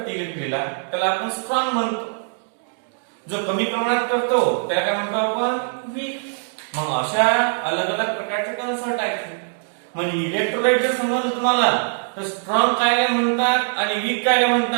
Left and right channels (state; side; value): silent; left; digital silence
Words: इलेक्ट्रिसिटीला त्याला आपण स्ट्रॉंग म्हणतो. जो कमी प्रमाणात करतो त्याला काय म्हणतो आपण वीक. मग अशा अलग अलग प्रकारचे कन्सेप्ट आहेत. म्हणजे इलेक्ट्रोलाइट जर समजलं तुम्हाला तर स्ट्रॉंग काय म्हणतात आणि वीक काय